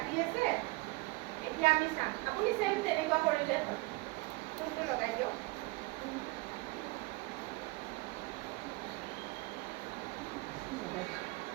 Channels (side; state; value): left; quieter; 23.8 dB